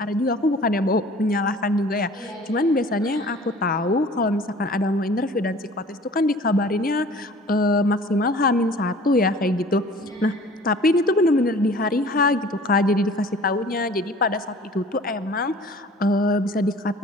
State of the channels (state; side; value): normal; both; correlation 0.48